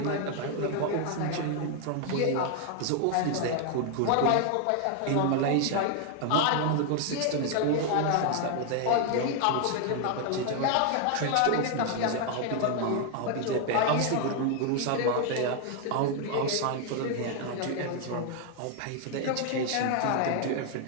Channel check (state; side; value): different; both; correlation 0.00